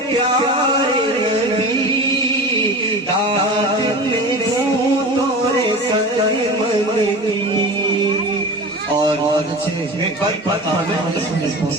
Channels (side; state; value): both; normal; correlation 0.33